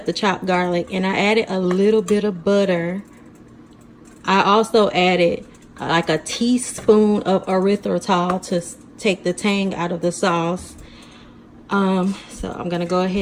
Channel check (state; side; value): identical; both; correlation 1.00